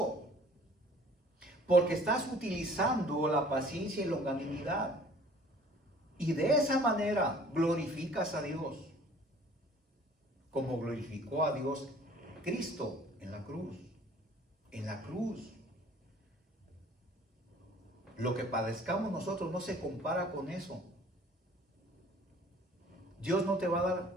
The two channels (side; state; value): both; normal; correlation 0.52